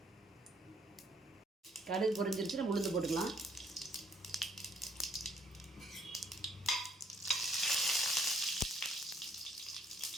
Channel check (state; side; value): normal; both; correlation 0.65